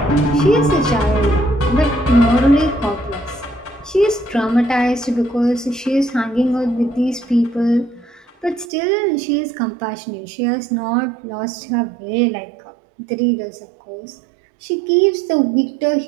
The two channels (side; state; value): left; drops out; at 8.7 s